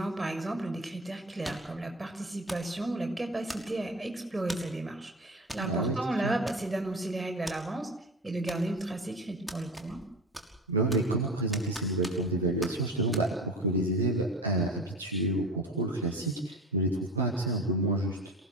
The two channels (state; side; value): normal; both; correlation 0.32